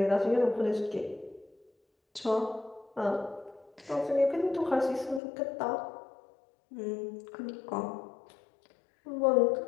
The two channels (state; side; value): drops out; right; at 5.2 s